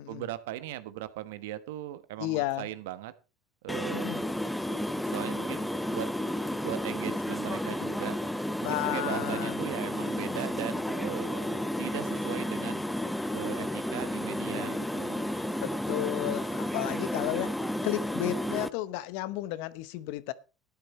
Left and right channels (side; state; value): both; normal; correlation 0.62